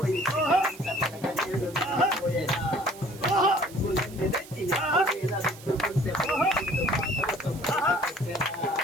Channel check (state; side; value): noise; right; hiss, 19 dB below the sound